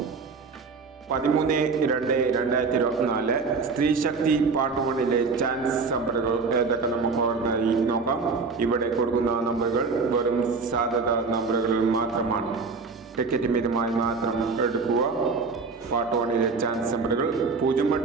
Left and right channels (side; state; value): left; quieter; 4.6 dB